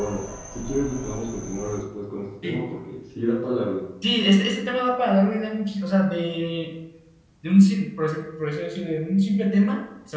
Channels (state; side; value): identical; both; correlation 1.00